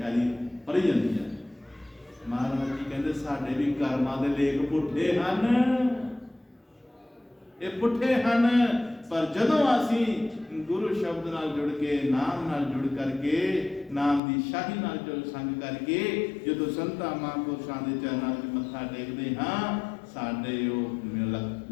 ਐਲੀ ਪੜ੍ਹੀ ਜਾਂਦੀ ਹੈ ਮਹਾਰਾਜ ਜੀ ਕਹਿੰਦੇ ਸਾਡੇ ਵੀ ਕਰਮਾਂ ਦੇ ਲੇਖ ਪੁੱਠੇ ਹਨ ਇਹ ਪੁੱਠੇ ਹਨ ਪਰ ਜਦੋਂ ਅਸੀਂ ਗੁਰੂ ਸ਼ਬਦ ਨਾਲ ਜੁੜ ਕੇ ਨਾਮ ਨਾਲ ਜੁੜ ਕਰਕੇ ਨਾਮ ਦੀ ਸ਼ਾਹੀ ਨਾਲ ਜੋ ਸੰਗ ਕਰਕੇ ਜਦੋਂ ਸੰਤਾਂ ਮਹਾਂਪੁਰਸ਼ਾਂ ਦੇ ਚਰਨਾਂ ਵਿੱਚ ਮੱਥਾ ਟੇਕਦੇ ਹਾਂ ਸਾਡੇ ਉਹ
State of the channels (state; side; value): drops out; right; at 14.2 s